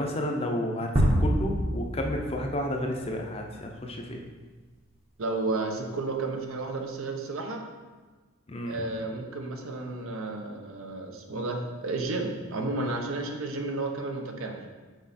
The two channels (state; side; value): normal; both; correlation 0.49